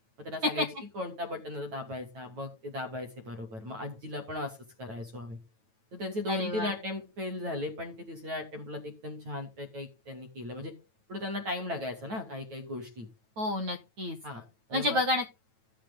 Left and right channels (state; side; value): late; left; 9.1 ms